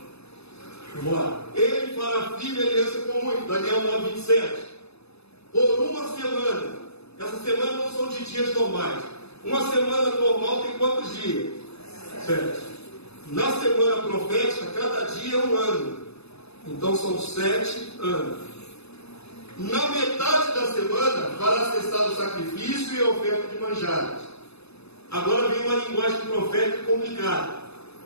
Vamos lá. Ele fará firme aliança com muito. Daniel 9, 27. Por uma semana. Essa semana não são de dias normais. Uma semana normal tem quantos dias? 7. Na semana profética, cada dia é um ano. Então são 7 anos. Na metade da semana, fará cessar o sacrifício e a oferta de manjares. Agora vem uma linguagem profética complicada.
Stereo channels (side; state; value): right; late; 0.79 ms